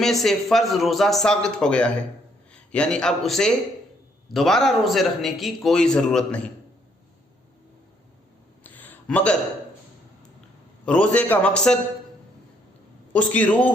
سے فرض روزہ ساقط ہو گیا ہے، یعنی اب اسے دوبارہ روزے رکھنے کی کوئی ضرورت نہیں۔ مگر روزے کا مقصد، اس کی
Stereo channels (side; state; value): both; normal; correlation 0.69